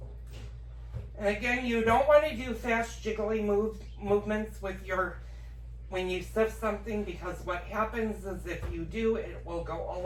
And again, you don't want to do fast jiggly movements with when you sift something, because what happens is if you do, it will go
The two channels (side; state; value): both; identical; correlation 1.00